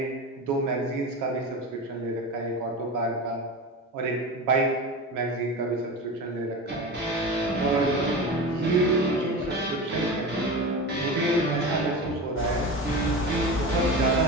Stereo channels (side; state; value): both; normal; correlation 0.27